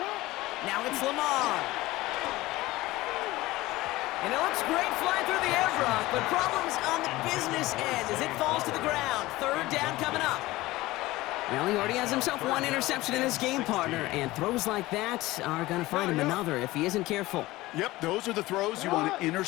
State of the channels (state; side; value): quieter; right; 18.6 dB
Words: Now it's Lamar. And it looks great flying through the air, Brock, but problems on the business end as it falls to the ground. Third down coming up. Well, he already has himself 1 interception in this game, partner, and throws like that are going to find him another if he isn't careful. Yep, those are the throws you want to